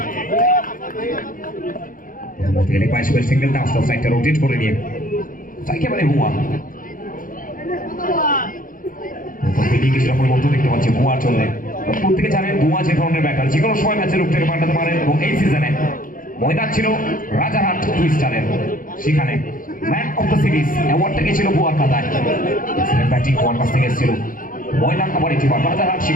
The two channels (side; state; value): right; late; 0.40 ms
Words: single dance side rotate করে নিয়ে একেবারে হুয়া কিছুটা পরিবর্তন দেখতে পাচ্ছি বুয়ার জন্য। প্রত্যেকে জানেন বুয়া যে ধরনের ব্যাটার যে কোনো সময় ম্যাচে রূপ থেকে পাল্টাতে পারেন এবং এই সিজনে ময়দান ছিল রাজারহাট টুইস্টারের, সেখানে ম্যান অফ দ্য সিরিজ অ্যাওয়ার্ডটা গেছিল বুয়ার খাতায়। ব্যাটিং বুয়ার কাছ থেকে এসেছিল, ময়দান আবার একটি বার রাজারহাট